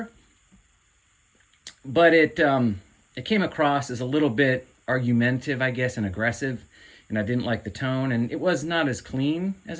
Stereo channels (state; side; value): identical; both; correlation 1.00